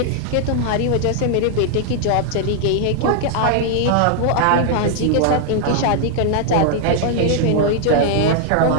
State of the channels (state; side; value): different; both; correlation 0.00